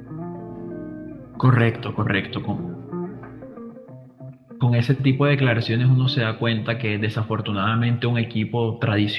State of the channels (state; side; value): identical; both; correlation 1.00